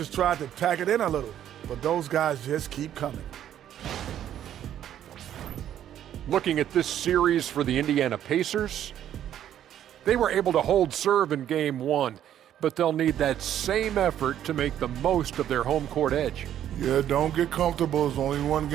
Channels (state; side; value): quieter; left; 10.8 dB